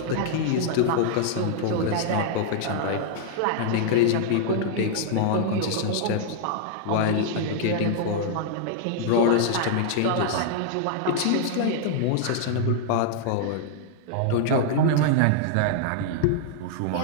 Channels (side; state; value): both; different; correlation 0.00